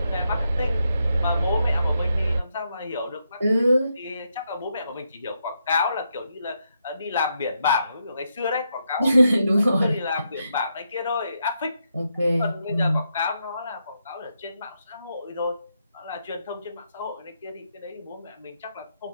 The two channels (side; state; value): both; inverted; correlation -0.81